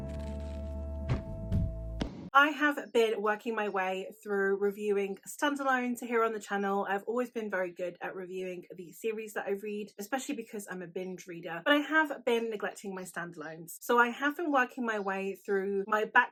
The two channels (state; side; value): identical; both; correlation 1.00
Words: I have been working my way through reviewing standalones here on the channel. I've always been very good at reviewing the series that I read, especially because I'm a binge reader, but I have been neglecting my standalones. So I have been working my way through my